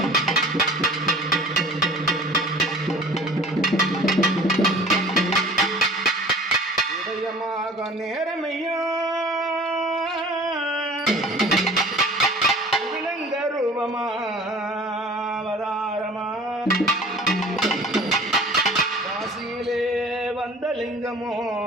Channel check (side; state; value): both; normal; correlation 0.46